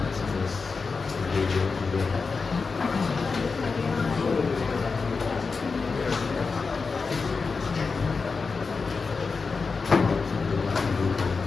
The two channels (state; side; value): quieter; right; 4.6 dB